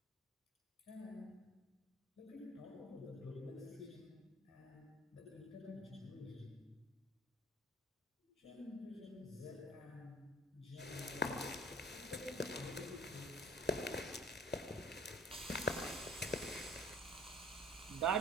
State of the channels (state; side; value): normal; both; correlation 0.49